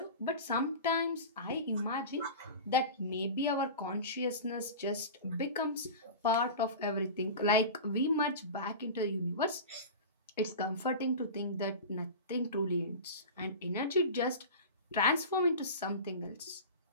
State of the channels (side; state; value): both; inverted; correlation -0.31